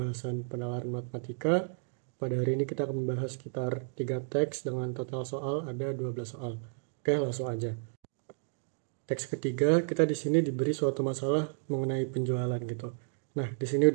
penalaran matematika. Pada hari ini kita akan membahas sekitar 3 teks dengan total soal ada 12 soal. Oke, langsung aja. Teks ketiga, kita di sini diberi suatu masalah mengenai penjualan gitu. Nah, di sini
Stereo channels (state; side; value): silent; left; digital silence